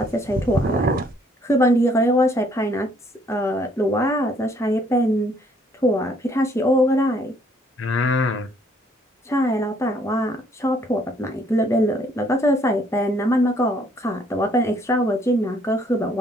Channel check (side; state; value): both; normal; correlation 0.65